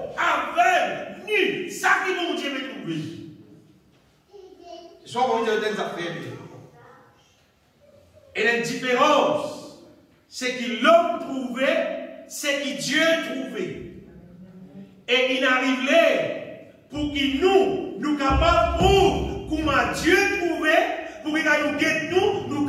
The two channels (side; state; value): both; identical; correlation 1.00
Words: aveugles, nus, ça qui bon Dieu peut trouver. Soit on va dire des affaires. Et la différence, c'est que l'homme trouvait c'est que Dieu trouvait. Et il arrivait pour qu'il nous capables pour comment Dieu trouvait, pour qu'il nous guette nous